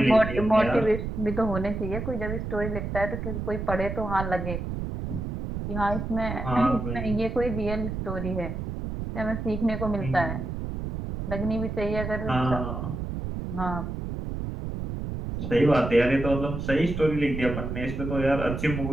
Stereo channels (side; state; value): right; noise; rumble, 5 dB below the sound